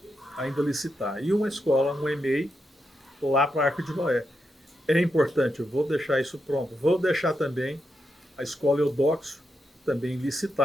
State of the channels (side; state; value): both; normal; correlation 0.85